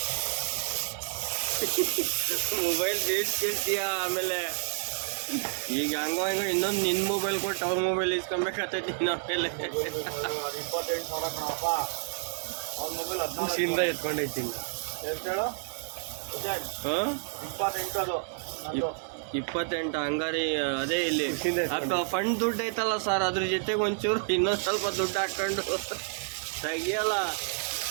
ಮೊಬೈಲ್ ಬೇಯಿಸ್ಕಿರ್ತೀಯ, ಆಮೇಲೆ ಈಗ ಹಂಗೋ ಇನ್ನೊಂದು ನಿನ್ನ ಮೊಬೈಲ್ ಕೊಟ್ಟು ಅವ್ರ ಮೊಬೈಲ್ ಇಸ್ಕೊಬೇಕಾಗ್ತೈತಿ ನೀನು. ಆಮೇಲೆ 28,000 ಕಣಪ್ಪ. ಅವ್ರ ಮೊಬೈಲ್ ಖುಷಿಯಿಂದ ಎತ್ಕೊಂಡೈತೀನಿ. ಎಷ್ಟು ಹೇಳು? ಹಾಂ, 28 ಅದು 28 ಹಂಗಾರಿ. ಅದೇ ಇಲ್ಲಿ ಫಂಡ್ ದುಡ್ಡು ಐತಲ್ಲ ಸರ್, ಅದ್ರ ಜೊತೆಗೆ ಒಂಚೂರು ಇನ್ನೊಂದು ಸ್ವಲ್ಪ ದುಡ್ಡು ಹಾಕೊಂಡು ತೆಗಿಯಲ್ಲ.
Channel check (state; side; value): silent; left; 58 dB below the other